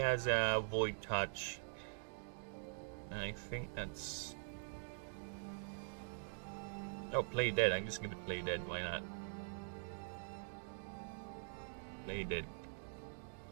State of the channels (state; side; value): silent; left; digital silence